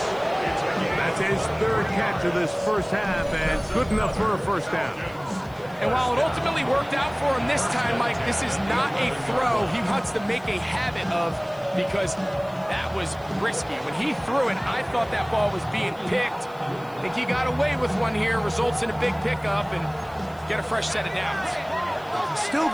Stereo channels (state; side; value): noise; left; hiss, 27 dB below the sound